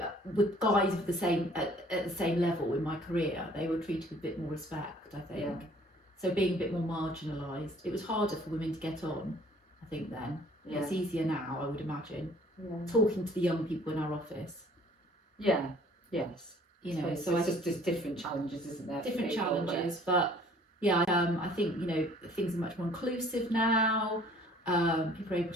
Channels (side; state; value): both; normal; correlation 0.55